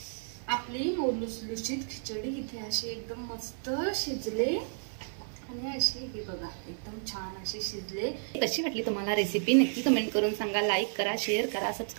आपली लुसलुसीत खिचडी इथे अशी एकदम मस्त शिजले आणि अशी हे बघा एकदम छान अशी शिजले। कशी वाटली तुम्हाला रेसिपी नक्की कमेंट करून सांगा। लाईक करा, शेअर करा,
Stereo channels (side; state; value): left; silent; 57 dB below the other